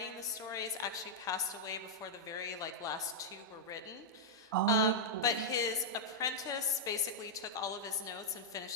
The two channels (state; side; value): normal; both; correlation -0.07